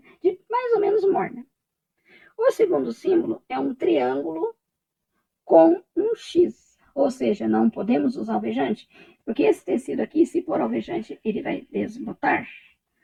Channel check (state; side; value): identical; both; correlation 1.00